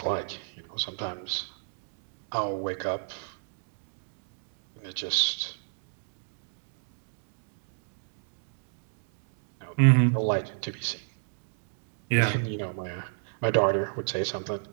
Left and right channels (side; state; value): left; silent; digital silence